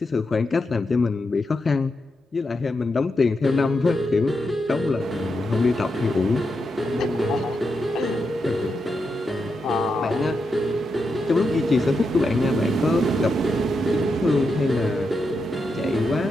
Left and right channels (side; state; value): both; normal; correlation 0.85